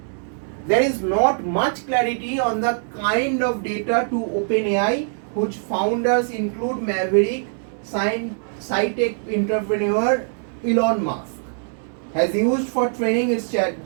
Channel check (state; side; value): silent; left; digital silence